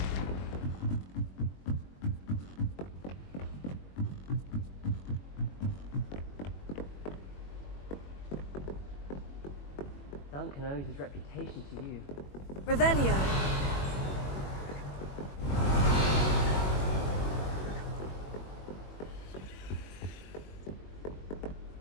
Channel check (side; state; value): right; late; 21 ms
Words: Duncan owes his reputation to you. Revelio.